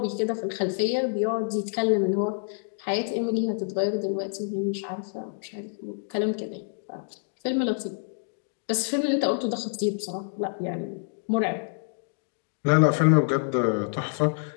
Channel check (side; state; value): right; silent; digital silence